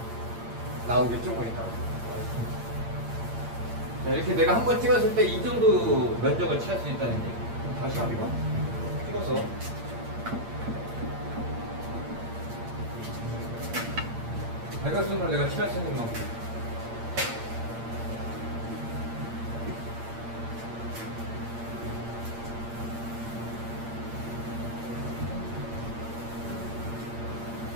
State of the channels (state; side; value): late; left; 8.7 ms